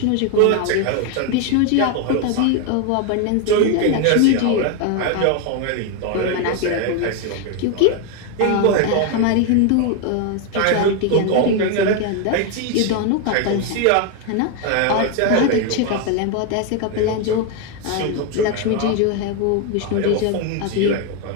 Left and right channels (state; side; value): different; both; correlation 0.01